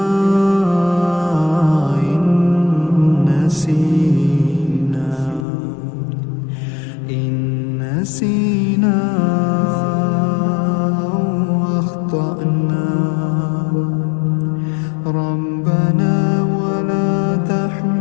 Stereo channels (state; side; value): drops out; right; at 5.5 s